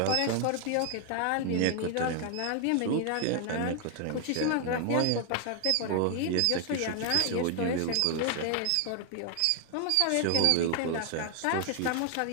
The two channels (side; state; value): both; different; correlation 0.00